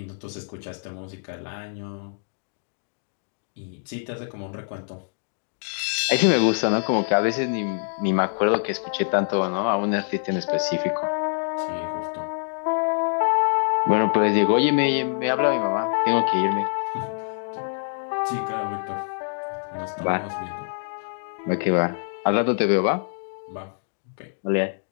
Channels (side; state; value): right; silent; digital silence